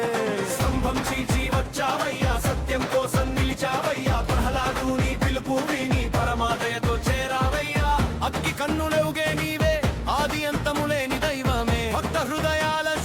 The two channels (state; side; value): identical; both; correlation 1.00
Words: స్తంభం చీల్చి వచ్చావయ్యా, సత్యం కోసం నిలిచావయ్యా, ప్రహ్లాదుని పిలుపు విని పరమాదయతో చేరావయ్యా. అగ్గి కన్నులెవుగే నీవే, ఆది అంతములేని దైవమే, భక్త హృదయాల